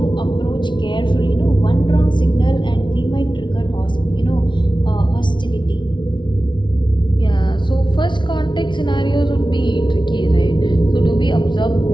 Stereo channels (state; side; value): late; right; 0.23 ms